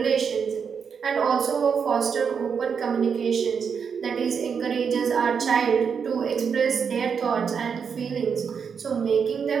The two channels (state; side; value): quieter; left; 6.5 dB